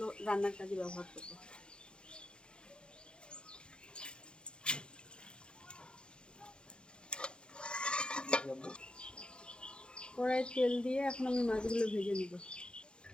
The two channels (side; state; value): right; late; 0.053 ms